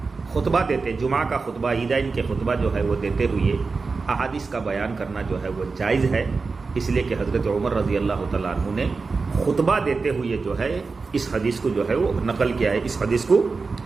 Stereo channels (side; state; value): left; quieter; 4.3 dB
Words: خطبہ دیتے, جمعہ کا خطبہ, عیدین کے خطبہ جو ہے وہ دیتے ہوئے احادیث کا بیان کرنا جو ہے وہ جائز ہے, اس لیے کہ حضرت عمر رضی اللہ تعالیٰ عنہ نے خطبہ دیتے ہوئے جو ہے اس حدیث کو جو ہے وہ نقل کیا ہے, اس حدیث کو